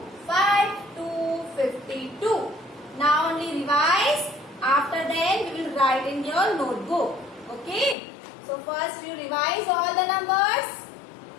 5 to 52. Now only revise. After that, we will write in your notebook. Okay. So first you revise all the numbers.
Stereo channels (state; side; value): drops out; right; at 8.0 s